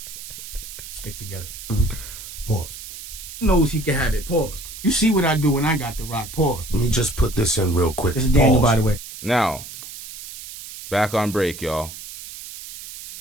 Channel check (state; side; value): noise; right; hiss, 12 dB below the sound